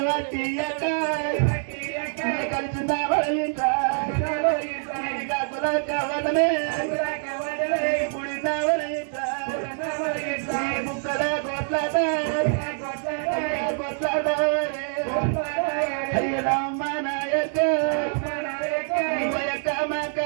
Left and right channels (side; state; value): left; silent; digital silence